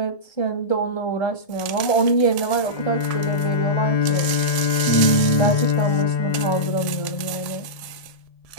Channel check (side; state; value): right; late; 1.7 ms